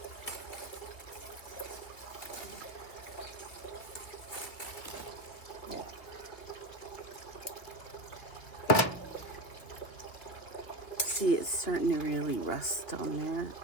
see it's starting to really rust on there.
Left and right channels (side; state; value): right; late; 3.0 ms